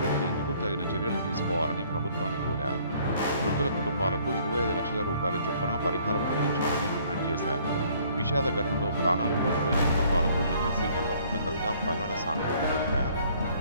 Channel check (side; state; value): both; inverted; correlation -0.60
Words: తగిన చర్యలు తీసుకోవాలని ప్రభుత్వాన్ని కోరారు. మృతుల కుటుంబాలకు 25 లక్షల రూపాయల చొప్పున పరిహారం అందించాలని డిమాండ్ చేశారు. విషాద ఘటనలో ప్రాణాలు కోల్పోయిన కుటుంబాలకు ఎమ్మెల్సీ కల్వకుంట్ల కవిత ప్రగాఢ సానుభూతి తెలిపారు.